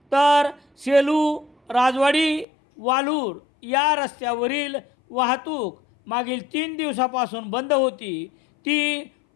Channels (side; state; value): right; drops out; at 2.5 s